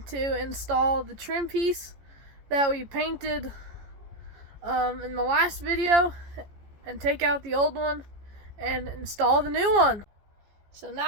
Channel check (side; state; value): left; late; 14 ms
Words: to install the trim piece that we painted in the last video and take out the old one and install the new one. So